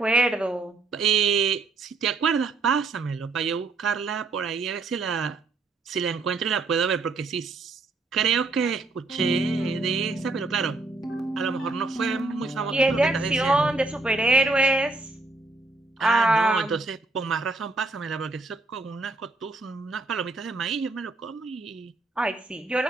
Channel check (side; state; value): left; quieter; 3.5 dB